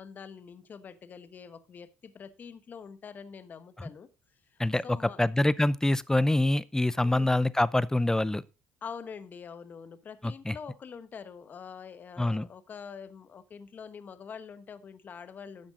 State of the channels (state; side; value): normal; both; correlation 0.98